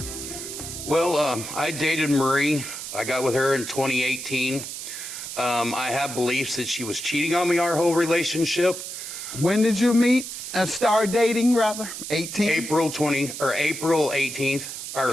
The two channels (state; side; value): noise; right; hiss, 8 dB below the sound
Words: Well, I dated Marie. I got with her in 2018. I have beliefs that she was cheating on me our whole relationship. When did you meet? Start dating, rather? 18? April 18th, or